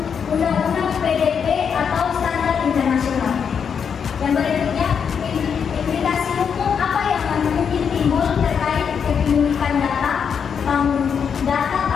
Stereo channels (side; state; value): right; quieter; 7.0 dB